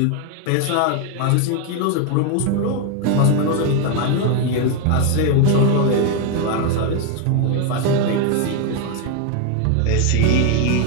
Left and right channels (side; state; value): both; different; correlation 0.01